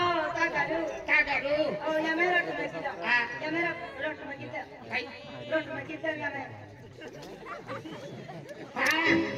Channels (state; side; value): identical; both; correlation 1.00